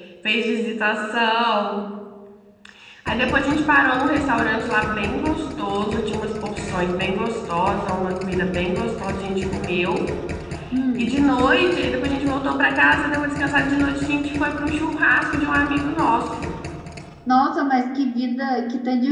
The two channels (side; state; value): both; identical; correlation 1.00